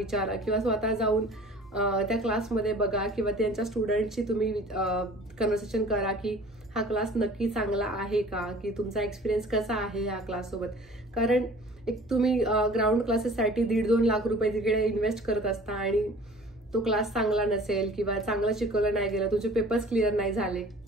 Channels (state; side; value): normal; both; correlation 0.47